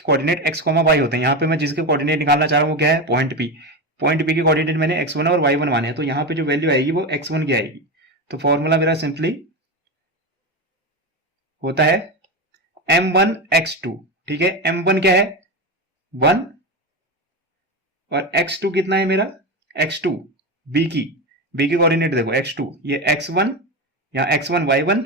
कोऑर्डिनेट x, y होते हैं। यहां पे मैं जिसके कोऑर्डिनेट निकालना चाह रहा हूं वो क्या है, पॉइंट p के कोऑर्डिनेट मैंने x1 और y1 माने हैं, तो यहां पे जो वैल्यू आएगी वो x1 की आएगी। तो फॉर्मूला मेरा सिंपली होता है m1x2। ठीक है, m1 क्या है 1 और x2 कितना है मेरा, x2 b की कोऑर्डिनेट देखो x2, ये x1 या x1 y1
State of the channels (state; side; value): normal; both; correlation 0.17